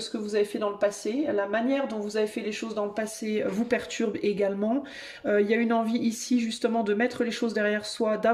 que vous avez fait dans le passé. La manière dont vous avez fait les choses dans le passé vous perturbe également. Il y a une envie ici justement de mettre les choses derrière soi,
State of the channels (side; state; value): both; identical; correlation 1.00